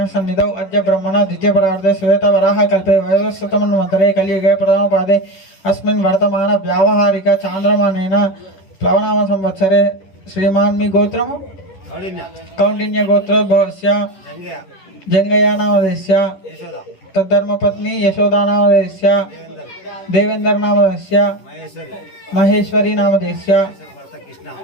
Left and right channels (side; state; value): right; late; 11 ms